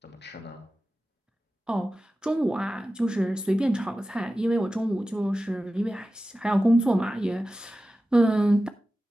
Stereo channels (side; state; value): both; normal; correlation 0.95